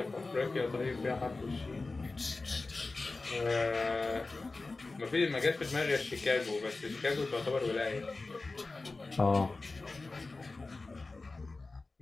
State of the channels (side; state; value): right; quieter; 3.5 dB